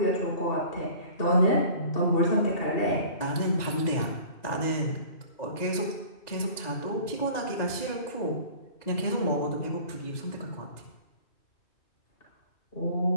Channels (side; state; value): right; late; 2.2 ms